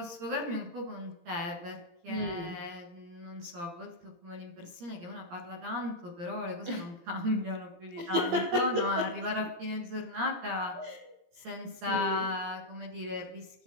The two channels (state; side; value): late; left; 17 ms